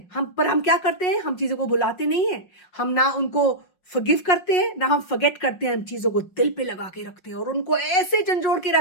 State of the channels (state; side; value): late; right; 5.5 ms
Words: हम क्या करते हैं? हम चीजों को भुलाते नहीं हैं, हम ना उनको फॉरगिव करते हैं ना हम फॉरगेट करते हैं, हम चीजों को दिल पे लगा के रखते हैं और उनको ऐसे झंझोड़ के